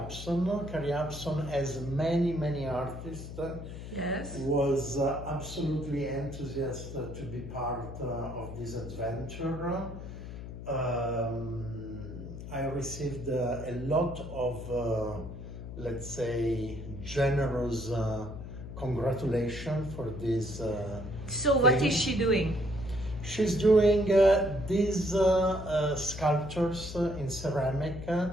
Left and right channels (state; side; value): noise; left; hum, 10 dB below the sound